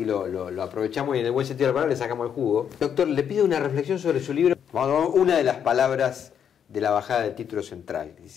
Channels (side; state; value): right; quieter; 8.3 dB